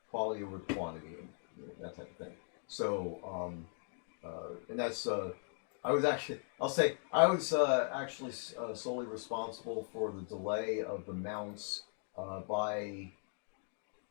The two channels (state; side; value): silent; right; 52 dB below the other